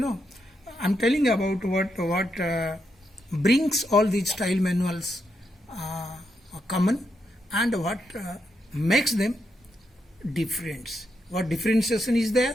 I'm telling about what brings all these style manuals common, and what makes them different. What differentiation is there?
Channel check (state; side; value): normal; both; correlation 0.82